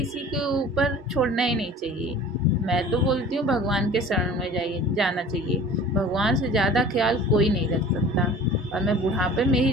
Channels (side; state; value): both; normal; correlation 0.43